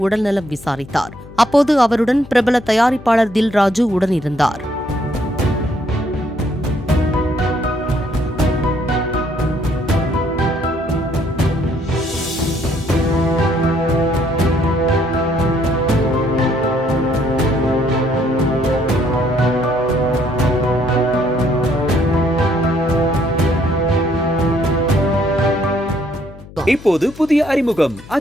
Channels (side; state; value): left; noise; hum, 18 dB below the sound